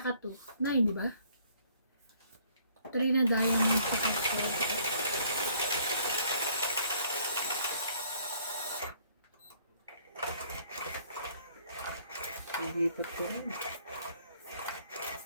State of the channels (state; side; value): inverted; both; correlation -0.62